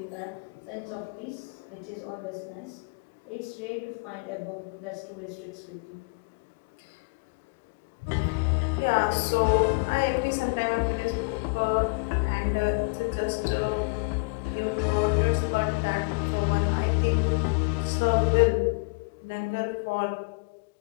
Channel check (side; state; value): right; quieter; 31.6 dB